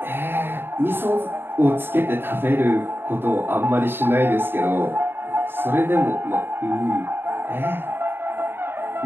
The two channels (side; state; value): left; late; 0.10 ms